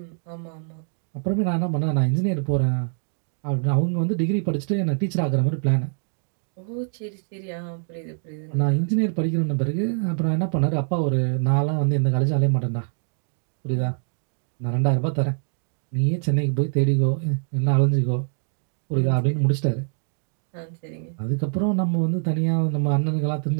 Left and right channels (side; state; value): left; silent; 62 dB below the other